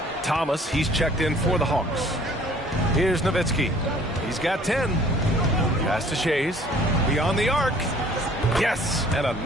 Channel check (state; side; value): normal; both; correlation 0.54